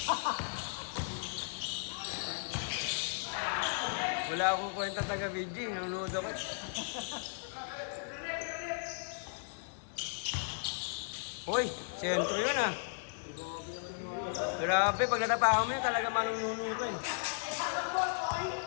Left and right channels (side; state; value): right; silent; digital silence